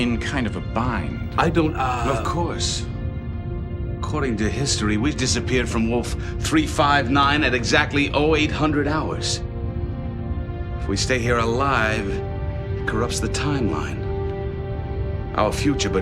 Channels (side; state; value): both; identical; correlation 1.00